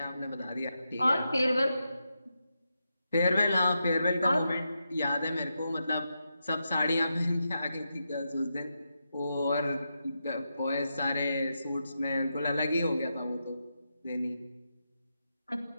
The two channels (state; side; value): inverted; both; correlation -0.86